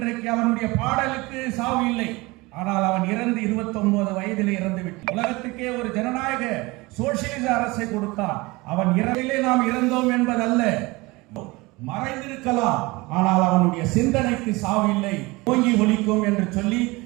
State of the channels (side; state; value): left; quieter; 23.1 dB